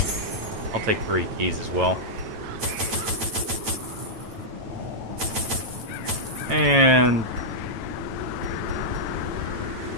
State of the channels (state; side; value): late; left; 9.0 ms